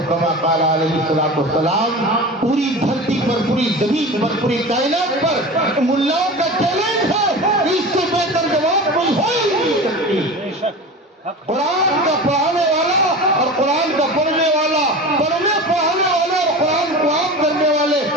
کما قال علیہ الصلوۃ والسلام۔ پوری دھرتی پر، پوری زمین پر، پوری کائنات پر ملاؤں کا چیلنج ہے، اس سے بہتر جواب کوئی ہو ہی نہیں سکتی۔ قرآن کا پڑھانے والا اور قرآن کا پڑھنے والا، پڑھنے پڑھانے والے اور قرآن کو عام کرنے والے،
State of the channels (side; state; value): both; normal; correlation 0.32